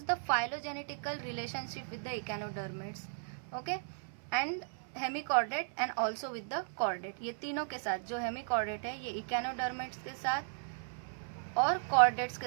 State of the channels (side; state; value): left; silent; 54 dB below the other